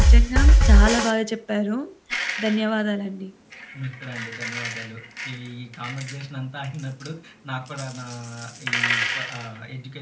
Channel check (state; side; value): identical; both; correlation 1.00